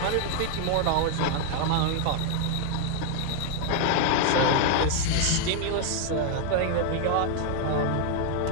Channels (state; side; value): different; both; correlation 0.00